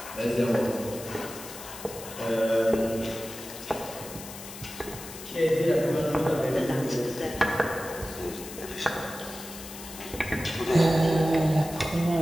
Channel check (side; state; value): left; noise; hiss, 13 dB below the sound